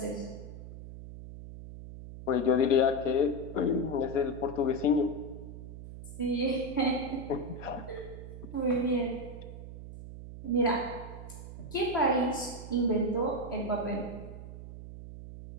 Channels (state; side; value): noise; right; hum, 12 dB below the sound